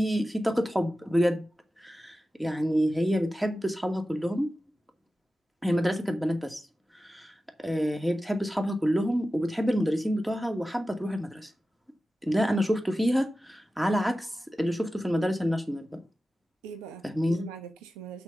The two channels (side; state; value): both; normal; correlation 0.94